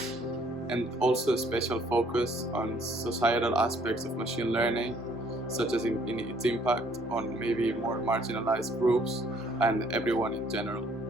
and also a special focus on societal aspects of machine learning, such as in its impact on maybe more marginalized groups and everyone in general.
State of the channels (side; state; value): both; normal; correlation 0.63